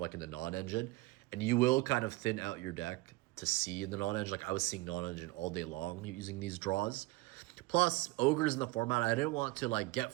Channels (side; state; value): left; quieter; 19.8 dB